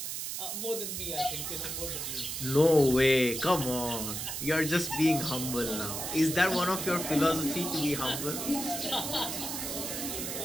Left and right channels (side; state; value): right; noise; hiss, 4 dB below the sound